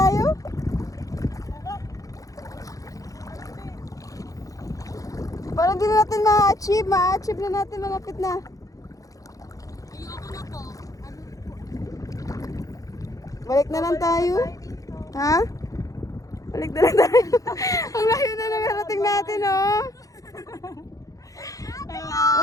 Para di na natin ma-achieve. Ma-achieve na natin, malapit na. Ayoko na po. Balik na lang tayo. Ha? Balik na lang tayo. Ang layo na narating natin, oh.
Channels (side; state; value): right; late; 0.17 ms